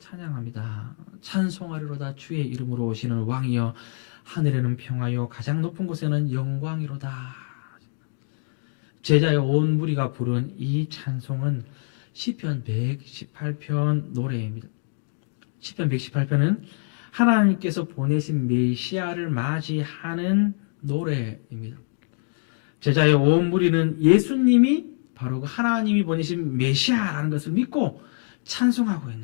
찬송하리로다 주의 이름으로 오시는 왕이여, 하늘에는 평화요 가장 높은 곳에는 영광이로다. 제자의 온 무리가 부른 이 찬송은 시편 118편 노래입니다. 시편 118편은 하나님께서 보내신 메시아를 맞이하는 노래입니다. 제자의 온 무리는 예수님이 바로 그 하나님이 보내신 메시아라는 것을 믿고 찬송하고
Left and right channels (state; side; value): silent; right; digital silence